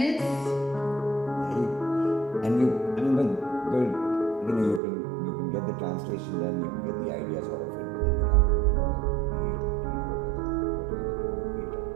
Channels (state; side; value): drops out; left; at 4.8 s